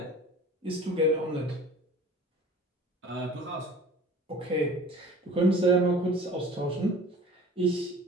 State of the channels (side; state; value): both; normal; correlation 0.44